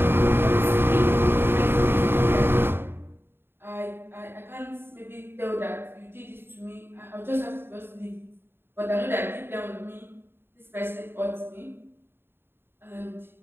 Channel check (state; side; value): late; left; 0.11 ms